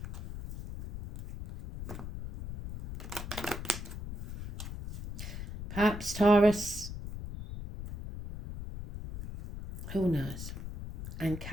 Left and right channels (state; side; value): noise; left; rumble, 8 dB below the sound